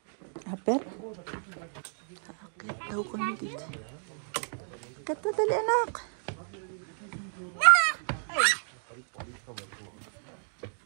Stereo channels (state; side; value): silent; left; 57 dB below the other